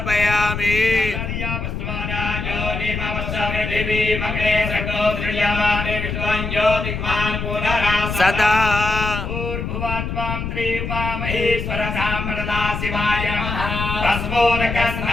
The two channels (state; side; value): noise; left; rumble, 4 dB below the sound